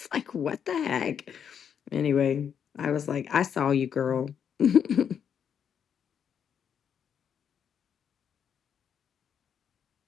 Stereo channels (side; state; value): right; quieter; 7.9 dB